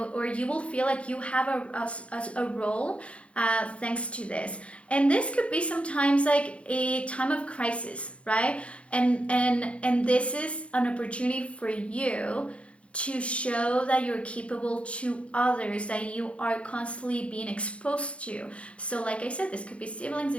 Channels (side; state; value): right; late; 0.061 ms